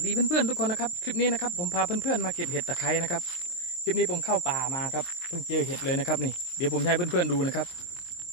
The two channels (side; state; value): right; late; 23 ms